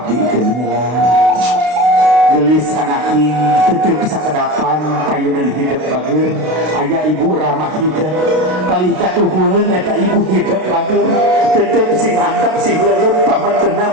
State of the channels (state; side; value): late; left; 32 ms